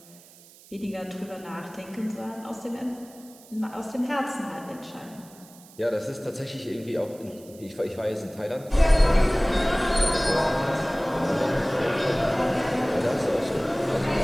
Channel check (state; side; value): noise; right; hiss, 23 dB below the sound